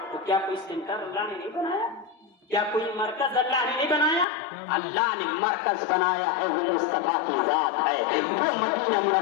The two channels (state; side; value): drops out; right; at 4.2 s